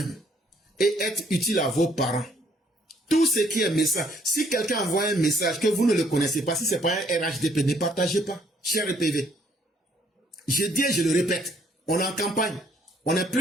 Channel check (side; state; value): both; normal; correlation 0.65